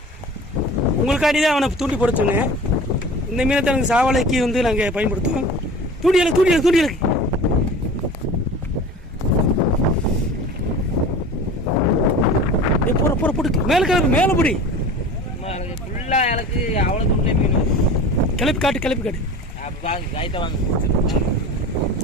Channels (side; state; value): both; normal; correlation 0.38